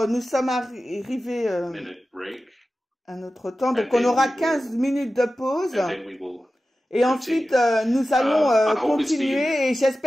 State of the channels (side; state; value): both; normal; correlation 0.94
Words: nous sommes arrivés à notre temps, donc on aura 15 minutes de pause. Et ensuite, nous allons continuer, et